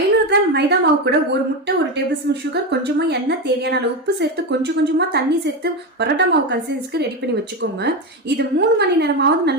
கிராம் மைதா மாவு கூட ஒரு முட்டை, ஒரு டேபிள் ஸ்பூன் சுகர், கொஞ்சமா எண்ணெய், தேவையான அளவு உப்பு சேர்த்து கொஞ்சம் கொஞ்சமா தண்ணி சேர்த்து பரோட்டா மாவு கன்சிஸ்டன்சிக்கு ரெடி பண்ணி வச்சுக்கோங்க. இது 3 மணி நேரமாவது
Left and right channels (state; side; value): normal; both; correlation 0.15